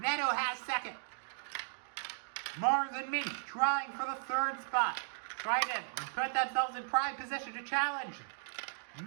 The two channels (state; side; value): silent; left; digital silence